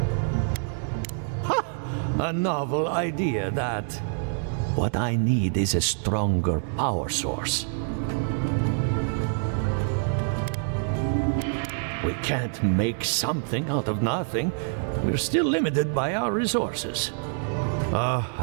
Ha! A novel idea, that. What I need is a stronger power source. We can't make something out of nothing. We're still limited by our resources.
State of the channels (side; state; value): left; silent; digital silence